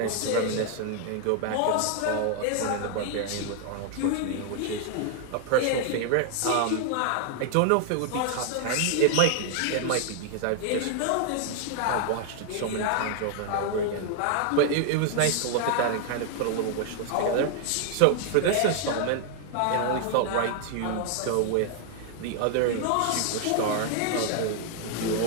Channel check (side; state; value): both; different; correlation 0.00